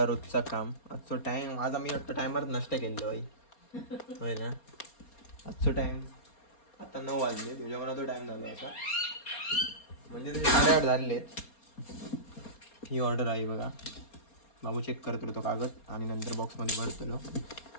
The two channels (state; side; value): late; right; 4.3 ms